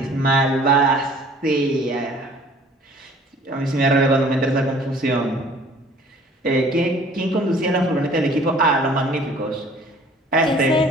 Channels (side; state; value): both; normal; correlation 0.52